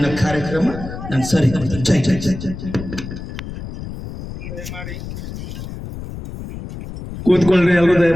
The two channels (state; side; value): noise; left; rumble, 10 dB below the sound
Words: ಕಾರ್ಯಕ್ರಮ ನಾನು ಸರಿ ಕೊಡ್ತೇನೆ. ಜೈ ಜೈ ಜೈ ಜೈ ಜೈ. ಕೂತ್ಕೊಳ್ರಿ, ಎಲ್ಲರೂ